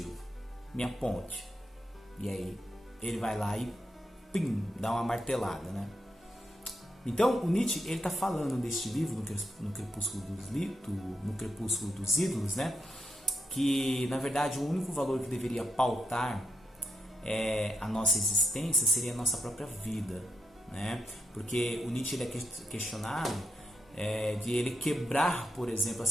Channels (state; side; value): normal; both; correlation 0.81